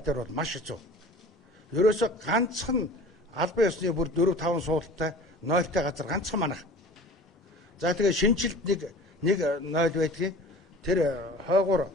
дээр бол маш хэцүү. Ерөөсө ганцхан албан ёсны бүр 4-5 суулттай нойлтой газар ганцхан манах. За тэгээ шинжилт нэг нойл байдгийг тэр хойгуур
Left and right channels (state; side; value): normal; both; correlation 0.41